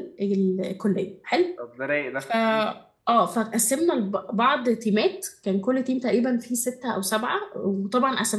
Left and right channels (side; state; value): both; identical; correlation 1.00